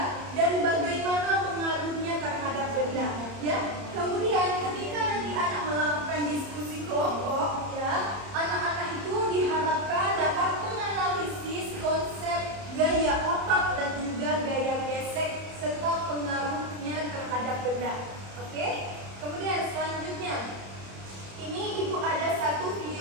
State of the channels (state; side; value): late; left; 30 ms